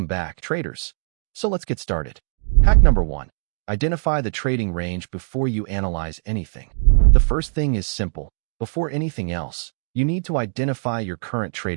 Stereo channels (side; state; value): left; silent; digital silence